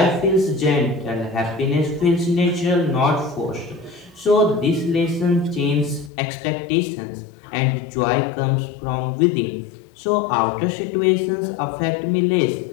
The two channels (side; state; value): right; drops out; at 6.1 s